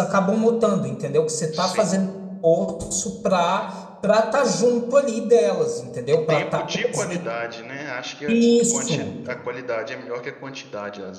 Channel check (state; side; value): identical; both; correlation 1.00